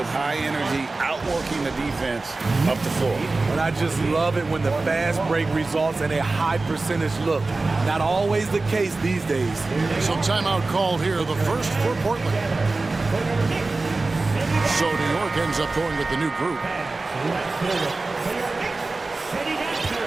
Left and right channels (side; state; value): left; quieter; 3.4 dB